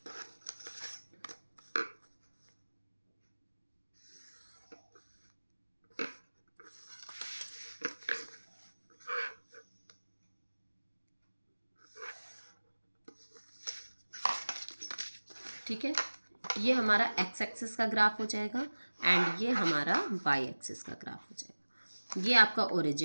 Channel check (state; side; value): inverted; both; correlation -1.00